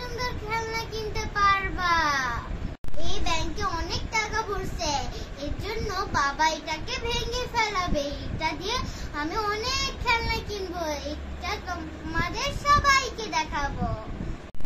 খেলনা কিনতে পারবা। এই ব্যাংকে অনেক টাকা ভরছে, এর জন্য বাবা এটাকে ভেঙে ফেলাবে। এটা দিয়ে আমি অনেক খেলনা কিনবো, এটা তোমাদের সবাইকে দেখাবো।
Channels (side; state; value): both; identical; correlation 1.00